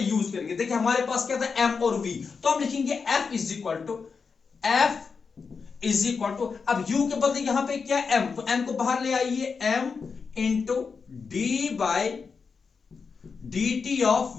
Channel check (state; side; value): quieter; right; 5.3 dB